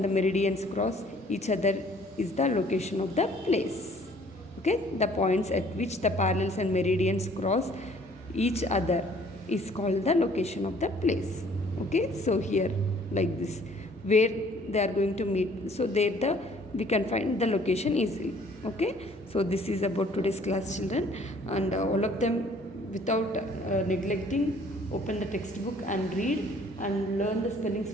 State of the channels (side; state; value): both; normal; correlation 0.57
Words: the meridians cross each other is the location of the place. Okay, the points at which the parallels and meridians cross each other is called the location of the place. Okay, so here like this, where they are going to meet, so there we can find the location easily. Okay, so this is about today's class, children, and all of them without neglecting, open the textbook and read and learn the spellings